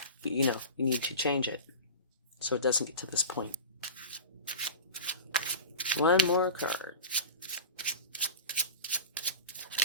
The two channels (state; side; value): inverted; both; correlation -0.31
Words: change it so it doesn't get to this point. One more card.